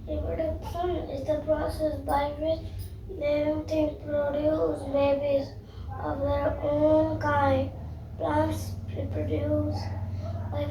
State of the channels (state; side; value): identical; both; correlation 1.00